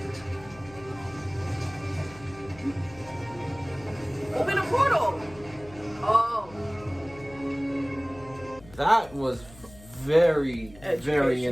Open a portal. Oh. That was very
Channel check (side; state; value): left; noise; hum, 20 dB below the sound